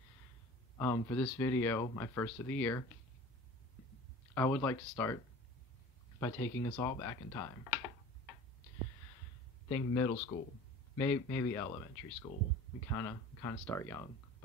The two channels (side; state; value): both; normal; correlation 0.41